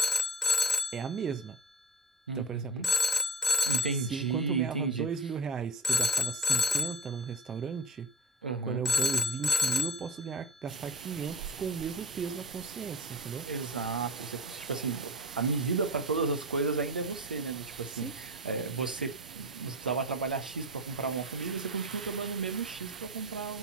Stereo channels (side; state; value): both; normal; correlation 0.34